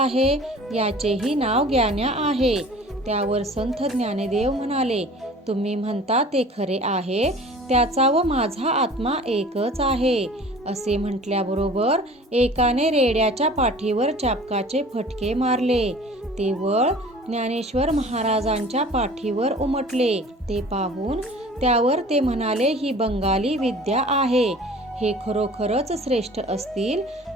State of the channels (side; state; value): both; normal; correlation 0.45